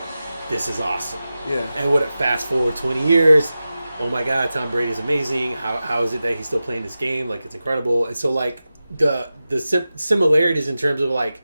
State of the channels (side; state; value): both; inverted; correlation -0.94